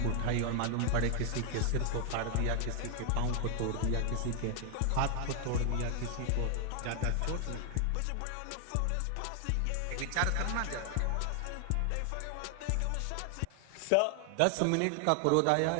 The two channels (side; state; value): both; different; correlation 0.00